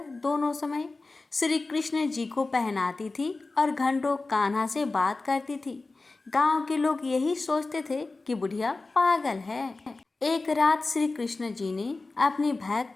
दोनों समय श्री कृष्ण जी को पहनाती थी और घंटों कान्हा से बात करती थी। गांव के लोग यही सोचते थे कि बुढ़िया पागल है। एक रात श्री कृष्ण जी ने अपनी भक्त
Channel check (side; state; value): right; quieter; 3.5 dB